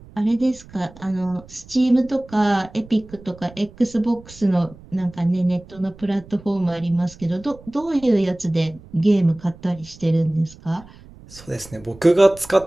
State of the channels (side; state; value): right; noise; rumble, 21 dB below the sound